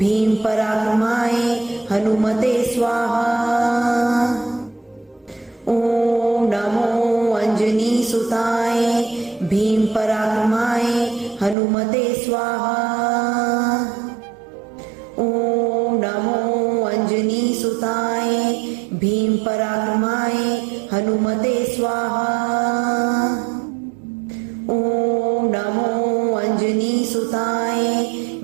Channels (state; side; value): drops out; left; at 11.6 s